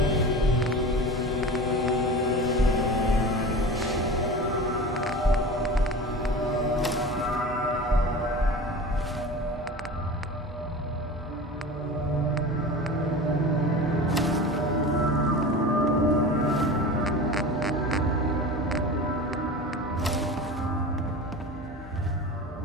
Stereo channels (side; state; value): both; normal; correlation 0.33